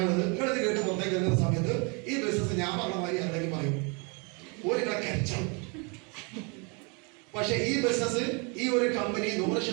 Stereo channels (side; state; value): left; quieter; 32.6 dB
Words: നിങ്ങളിത് കേട്ട് പുറത്തേക്ക് ഇറങ്ങുന്ന സമയത്ത് ഈ ബിസിനസ് ഞാൻ പറഞ്ഞ മാതിരി എന്തെങ്കിലും പറയും, ഒരു കച്ചവടം. പക്ഷെ ഈ ബിസിനസ്, ഈ ഒരു കമ്പനി